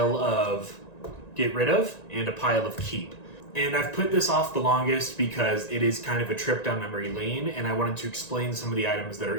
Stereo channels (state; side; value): late; right; 1.9 ms